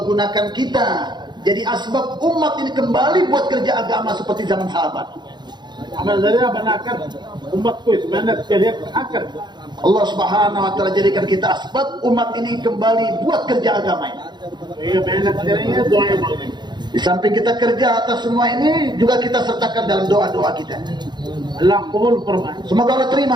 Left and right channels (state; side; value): late; left; 0.21 ms